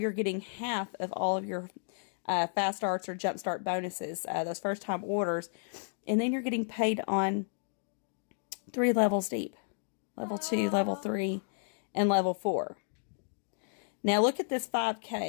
getting half of all of your fast starts or jump start bonuses, those first time orders, and then you're getting paid on 3 levels deep: level 2, level 3, and level 4. Now look at this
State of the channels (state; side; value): silent; right; digital silence